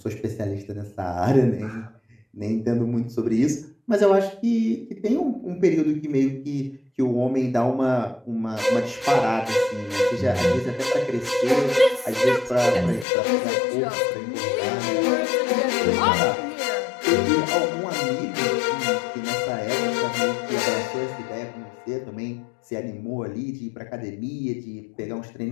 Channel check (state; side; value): drops out; right; at 13.1 s